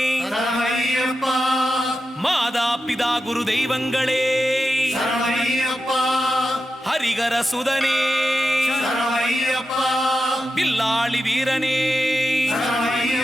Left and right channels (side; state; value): both; normal; correlation 0.90